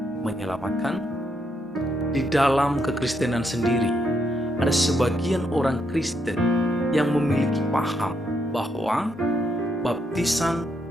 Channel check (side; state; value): both; normal; correlation 0.77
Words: menyelamatkan? Di dalam kekristenan sendiri, ada sebagian orang Kristen yang memiliki paham bahwa baptisan